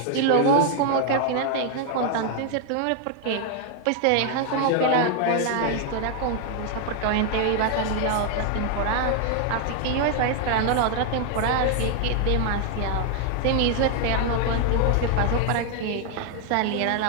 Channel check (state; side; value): different; both; correlation 0.00